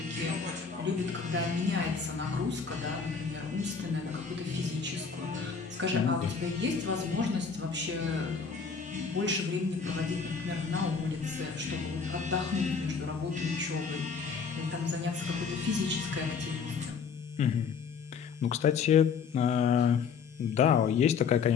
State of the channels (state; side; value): quieter; right; 5.8 dB